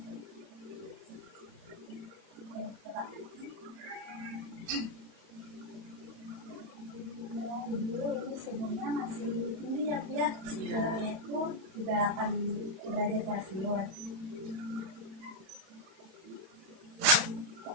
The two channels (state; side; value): late; left; 31 ms